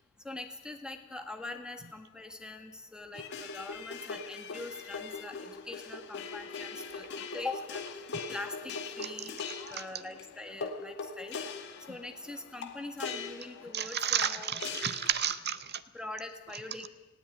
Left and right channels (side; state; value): both; normal; correlation 0.15